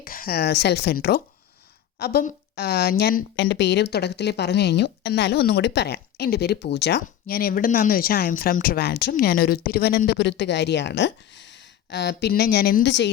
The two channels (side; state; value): right; quieter; 10.9 dB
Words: self intro. അപ്പം ഞാൻ എൻ്റെ പേര് തുടക്കത്തിൽ പറഞ്ഞു കഴിഞ്ഞു, എന്നാലും ഒന്നും കൂടി പറയാം. എൻ്റെ പേര് പൂജ. ഞാൻ എവിടെ നിന്നാണെന്ന് വെച്ചാൽ ഐ എം ഫ്രം ട്രിവാൻഡ്രം. ഞാനൊരു തിരുവനന്തപുരത്തുകാരിയാണ്. പിന്നെ ഞാൻ എന്ത്